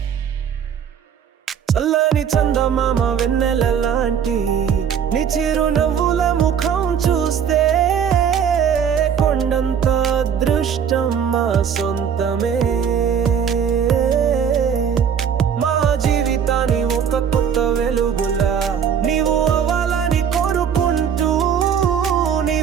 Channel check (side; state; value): left; quieter; 7.8 dB